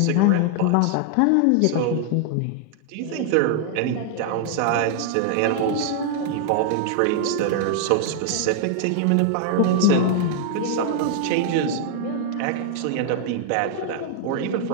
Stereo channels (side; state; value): both; different; correlation 0.00